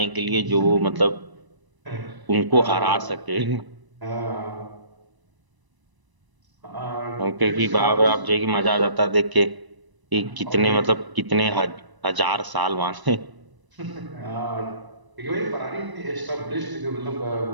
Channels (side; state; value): left; late; 1.0 ms